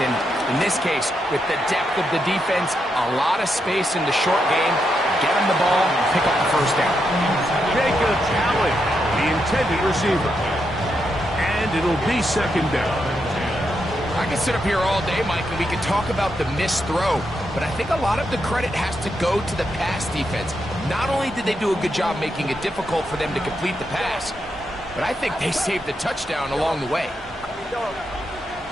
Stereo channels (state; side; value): normal; both; correlation 0.83